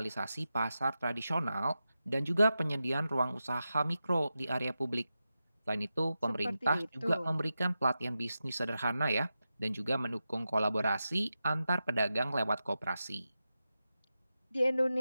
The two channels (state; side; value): inverted; both; correlation -0.91